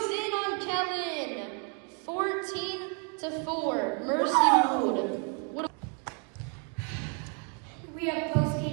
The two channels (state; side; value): quieter; left; 38.8 dB